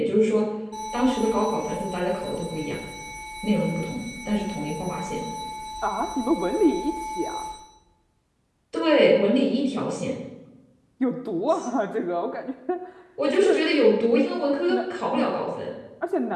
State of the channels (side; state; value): both; identical; correlation 1.00